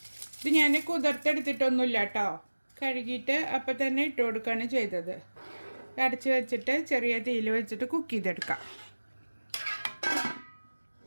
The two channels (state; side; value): inverted; both; correlation -1.00